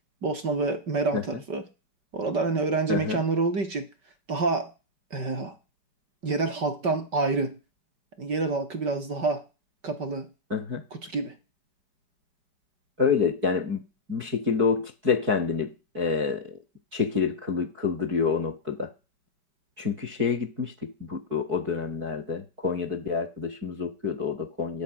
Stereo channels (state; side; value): late; left; 5.2 ms